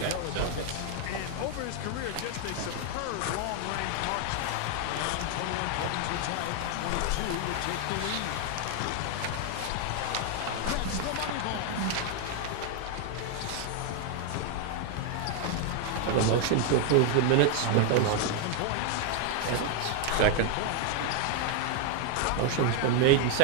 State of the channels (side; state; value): both; different; correlation 0.00